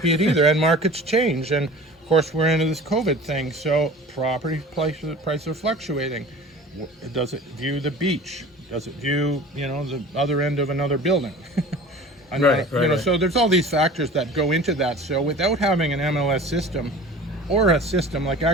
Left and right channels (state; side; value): normal; both; correlation 0.41